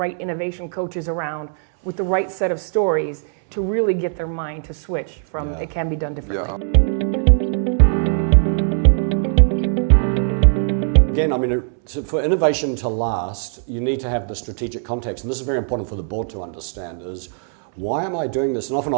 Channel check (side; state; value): left; silent; 66 dB below the other